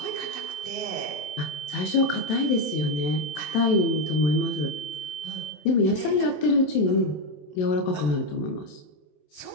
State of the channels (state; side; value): late; right; 27 ms